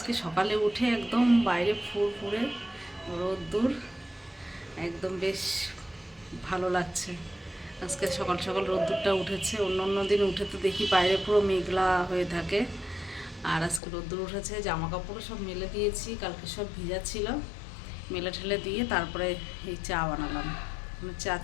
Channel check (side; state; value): right; drops out; at 13.8 s